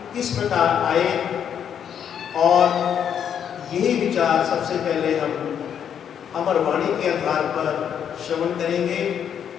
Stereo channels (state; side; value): quieter; right; 8.6 dB